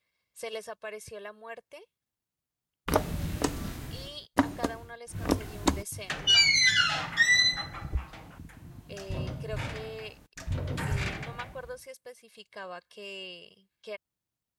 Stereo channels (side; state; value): both; identical; correlation 1.00